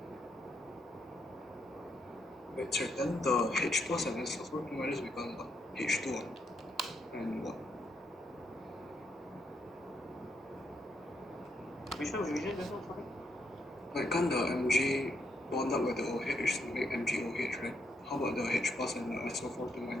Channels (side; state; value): both; normal; correlation 0.77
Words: Wait, sir, then the H plus and SO4 2 minus becomes what? H2 and what? Which one? This one, sorry? Like, can't the Mg bond up with the OH to make MgOH, right? How about the H plus and the SO4 2